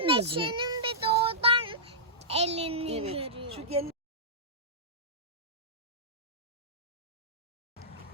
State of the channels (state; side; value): normal; both; correlation -0.16